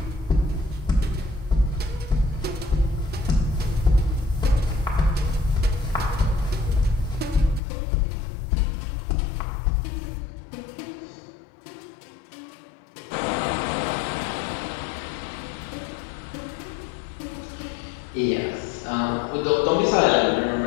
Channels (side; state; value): right; drops out; at 7.6 s